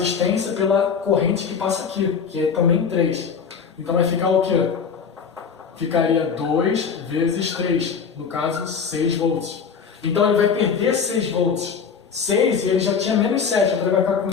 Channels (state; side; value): quieter; right; 6.2 dB